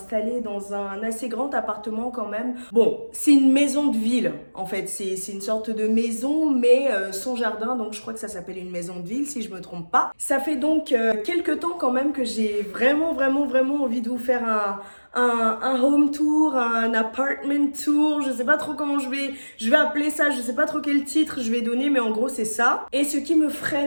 dans un assez grand appartement quand même. Bon, c'est une maison de ville en fait. C'est une sorte de maison mais sans jardin. Donc je crois que ça s'appelle une maison de ville si je me trompe pas. Ça fait donc quelques temps quand même que j'ai vraiment envie de vous faire un home tour, un apartment tour, je sais pas trop comment je vais appeler ça, je sais pas trop quel titre je vais donner, mais en gros c'est ça. Et ce qui me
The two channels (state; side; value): inverted; both; correlation -1.00